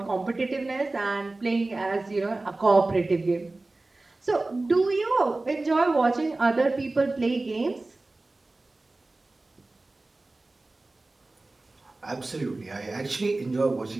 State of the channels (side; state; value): left; quieter; 3.1 dB